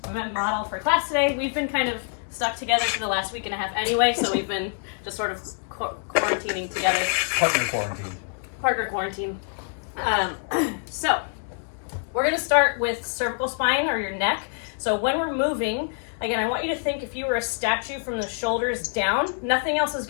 my model for class today. We've been kind of stuck together for the last week and a half anyway, so we've been just sort of quarantining together. Partner quarantine. So we're going to start with cervical spine, or your neck. So when we're moving, again, I want you to think if you were a statue from the shoulders down, nothing else is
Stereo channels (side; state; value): right; silent; 61 dB below the other